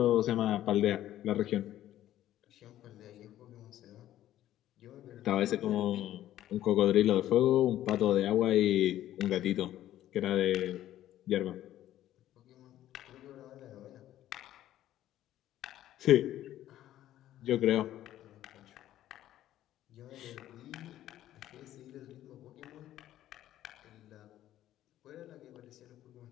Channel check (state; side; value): quieter; right; 13.0 dB